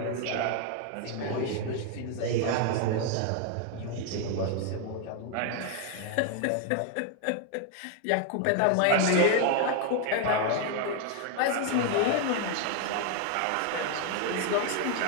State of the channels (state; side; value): different; both; correlation 0.01